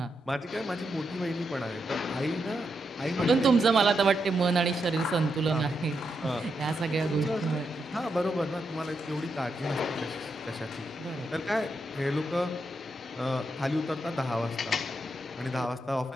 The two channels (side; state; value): both; normal; correlation 0.83